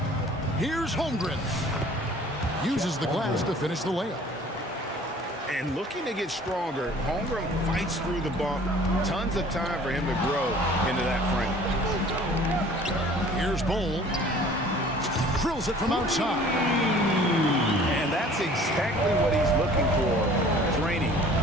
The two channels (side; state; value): both; normal; correlation 0.50